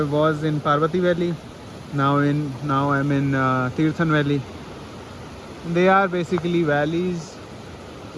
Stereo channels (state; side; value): identical; both; correlation 1.00